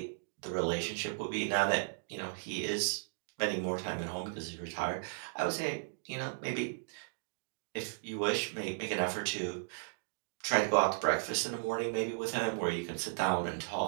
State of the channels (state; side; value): silent; left; digital silence